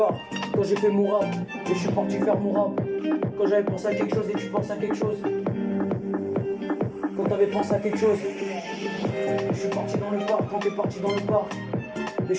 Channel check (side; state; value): both; identical; correlation 1.00